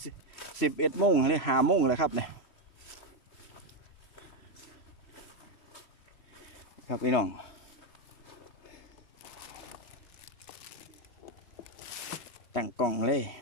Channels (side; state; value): right; late; 3.0 ms